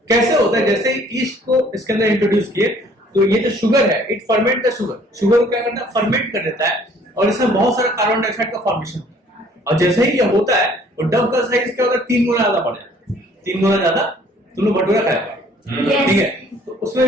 कैसे होता है, जैसे ईस्ट को इसके अंदर इंट्रोड्यूस किए तो ये जो शुगर है, इट फर्मेंट द शुगर को क्या करता है, फर्मेंट कर देता है, और इसमें बहुत सारा कार्बन डाइऑक्साइड का फॉर्मेशन होता है. और जैसे ही ये होता है तो डव का साइज क्या होता है, 3 गुना ज्यादा बढ़ जाता है. 3 गुना ज्यादा. तुम लोग भटूरा खाया होगा, ठीक है. तो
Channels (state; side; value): normal; both; correlation 0.57